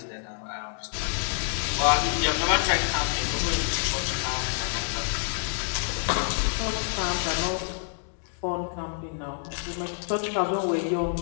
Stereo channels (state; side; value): silent; right; 60 dB below the other